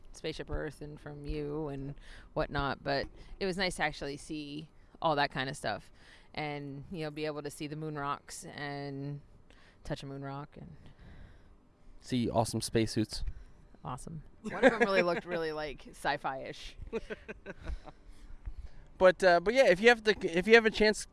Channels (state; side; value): identical; both; correlation 1.00